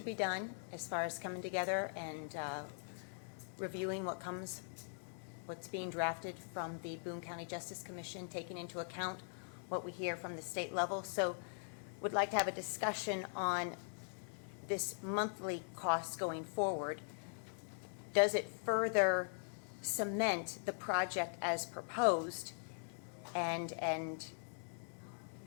be done as far as coming together and reviewing what's being drafted from the Boone County Justice Commission, taking into account what we hear from the state level. So would like to have a discussion on this monthly cost going forward. Does it further cement the project as proposed and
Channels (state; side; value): silent; right; digital silence